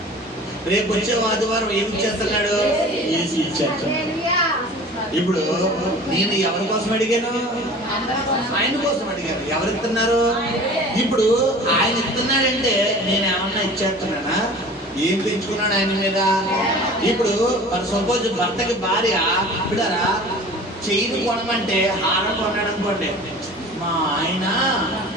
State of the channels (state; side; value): normal; both; correlation 0.42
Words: రేపు వచ్చే ఆదివారం ఏమి ఇచ్చేస్తున్నాడు? ఏసీ ఇచ్చేస్తాడు. ఇప్పుడు నేను ఎవరి కోసం అడిగాను? ఆయన కోసం అడిగాను. ఎవరు ఇస్తున్నారు? ఇప్పుడు ఆయన ఇస్తున్నాడంటే నేను ఏమన్నా ఇచ్చేస్తున్నానా? ఏం పెంచుకున్నాడు ఆయన మీద? ఇప్పుడు సపోజ్ భర్తకి భార్య బిడ్డరా చైన్ కొనమంటే హారం కొన్నాడు అనుకోండి. మా ఆయన